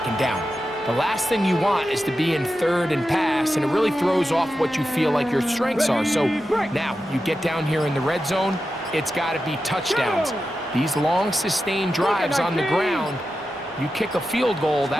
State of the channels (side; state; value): both; normal; correlation 0.91